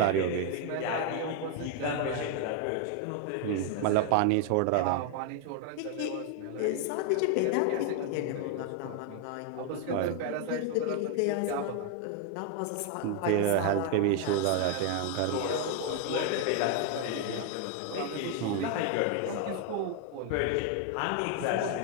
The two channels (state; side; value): different; both; correlation 0.00